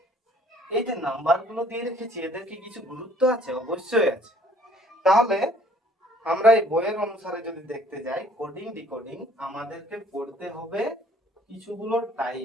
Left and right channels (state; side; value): normal; both; correlation 0.57